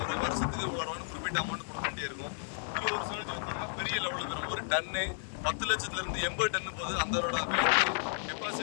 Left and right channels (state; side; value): silent; right; 56 dB below the other